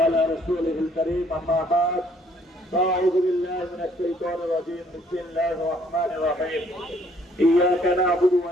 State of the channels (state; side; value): normal; both; correlation 0.64